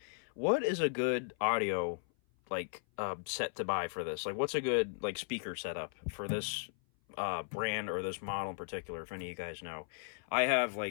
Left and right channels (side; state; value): right; silent; 54 dB below the other